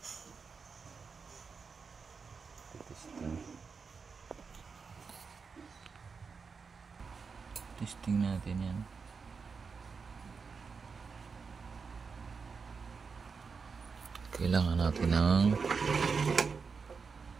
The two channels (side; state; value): left; quieter; 5.2 dB